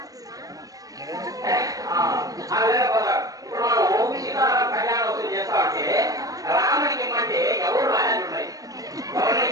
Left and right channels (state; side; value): late; left; 0.17 ms